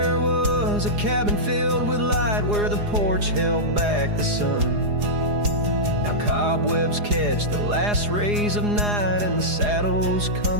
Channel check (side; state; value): left; late; 4.8 ms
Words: was a cabin filled with light where the porch held back the sun. Now cobwebs catch the last rays of night and the saddles